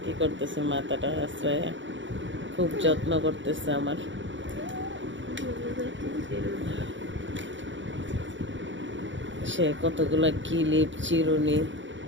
কি করতেছে, মাথাটা আশ্রয় খুব যত্ন করতেছে আমার। সে কতগুলা কিলিপ চিরুনি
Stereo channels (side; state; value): left; late; 0.55 ms